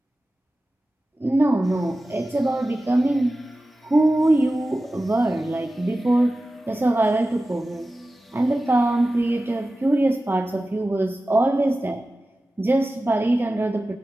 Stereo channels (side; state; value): both; normal; correlation 0.95